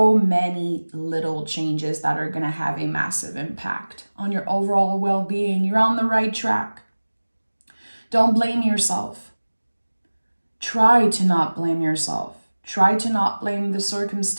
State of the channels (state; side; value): inverted; both; correlation -1.00